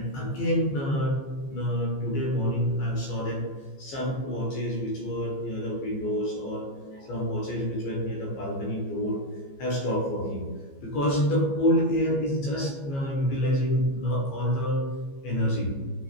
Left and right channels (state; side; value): late; right; 15 ms